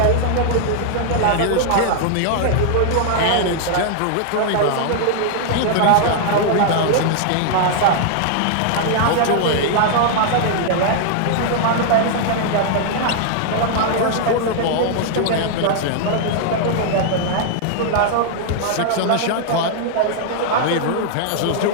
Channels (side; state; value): both; different; correlation -0.01